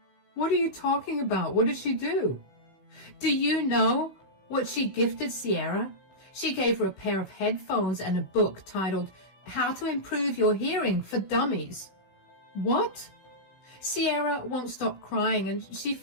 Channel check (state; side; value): late; right; 16 ms